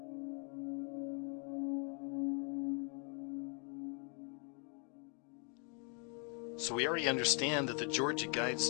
So we already understand that the Georgia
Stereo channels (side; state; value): right; quieter; 38.8 dB